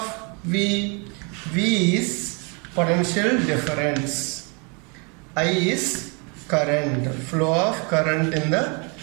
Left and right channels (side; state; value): left; quieter; 33.5 dB